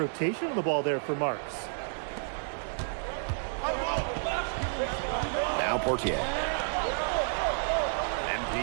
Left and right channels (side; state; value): left; silent; digital silence